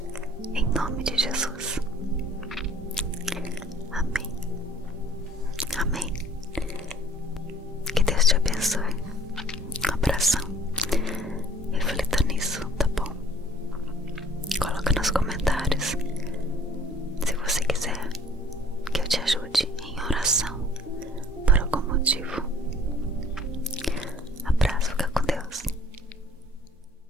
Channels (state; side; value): normal; both; correlation 0.54